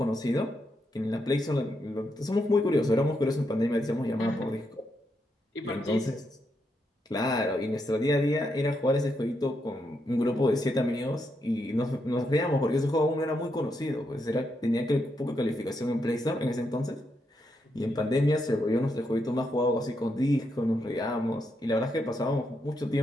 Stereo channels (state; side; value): normal; both; correlation 0.81